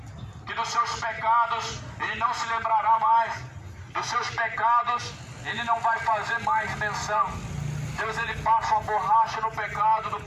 que dos seus pecados ele não se lembrará mais. Dos seus pecados ele não vai fazer mais menção. Deus, ele passa uma borracha no pecado do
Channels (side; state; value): both; identical; correlation 1.00